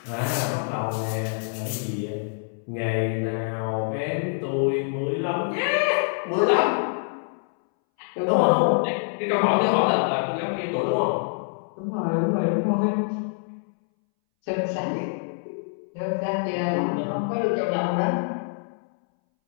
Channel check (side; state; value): right; silent; 61 dB below the other